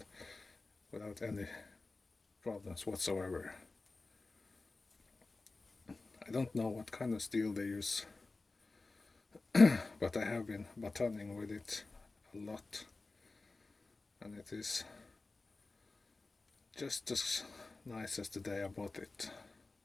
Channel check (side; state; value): right; quieter; 3.5 dB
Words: without any problems whatsoever. I don't know what kind of steel they use but I have been batoning with it a lot, and it is just as nice as the day I bought it.